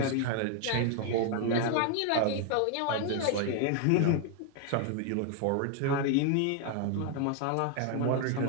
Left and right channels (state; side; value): different; both; correlation 0.00